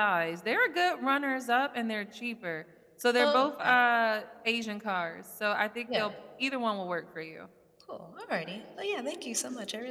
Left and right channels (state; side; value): identical; both; correlation 1.00